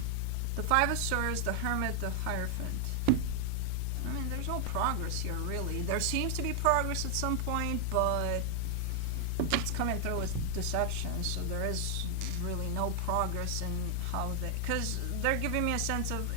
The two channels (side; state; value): both; different; correlation 0.00